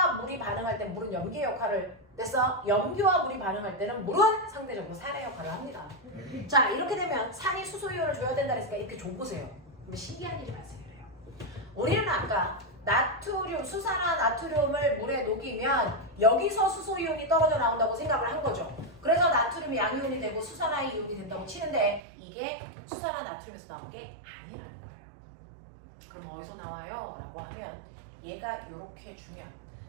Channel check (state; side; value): drops out; left; at 22.0 s